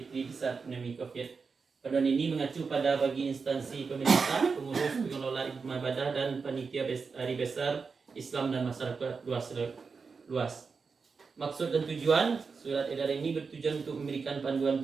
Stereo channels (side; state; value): left; quieter; 5.0 dB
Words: di saat pandemi COVID. Panduan ini mengacu pada bagi instansi pemerintah, pengurus, pengelola ibadah dan panitia hari besar Islam dan masyarakat luas. Maksud dan tujuan surat edaran ini bertujuan untuk memberikan panduan